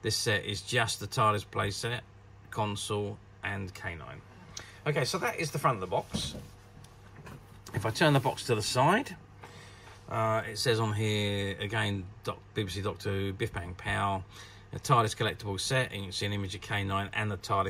This set is just the TARDIS playset, console and K9. Okay, so that is the front of the box. If I turn the box to the side, it says on here again BBC Doctor Who, Biff Bang Pow, a TARDIS collectible set, and you can see an image of K9 and the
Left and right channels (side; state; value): both; identical; correlation 1.00